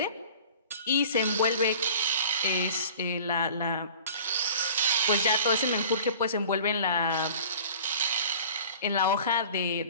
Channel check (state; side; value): inverted; both; correlation -0.44